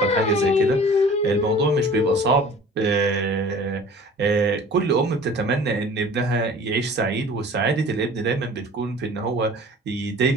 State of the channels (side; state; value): both; normal; correlation 0.45